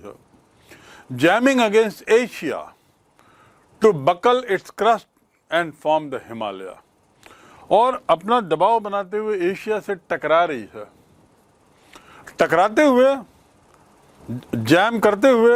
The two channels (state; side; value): identical; both; correlation 1.00